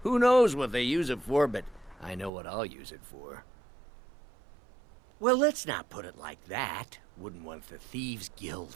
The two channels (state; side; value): drops out; left; at 2.3 s